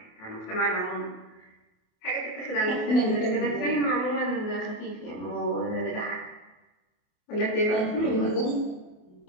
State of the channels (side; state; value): right; late; 28 ms